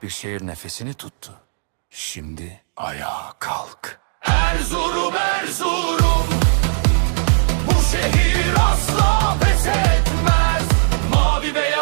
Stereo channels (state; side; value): silent; left; digital silence